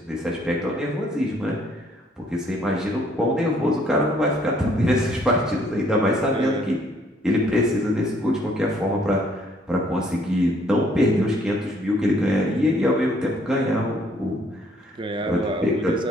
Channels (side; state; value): both; normal; correlation 0.64